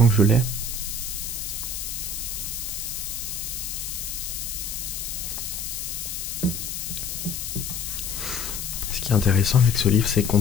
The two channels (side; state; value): left; noise; hiss, 5 dB below the sound